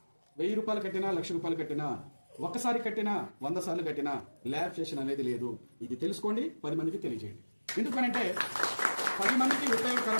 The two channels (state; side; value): inverted; both; correlation -1.00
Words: 1000 రూపాయలు కట్టినా, 1,00,000 రూపాయలు కట్టినా, ఒక్కసారి కట్టినా, 100 సార్లు కట్టినా ల్యాబ్ సెషన్ అనేది లేదు. ఇది తెలుసుకోండి, 10 మందికి తెలియజేయండి. ఎందుకనంటే 10 మందికి